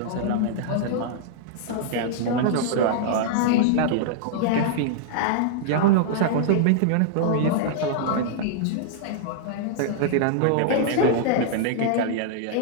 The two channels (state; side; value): different; both; correlation -0.01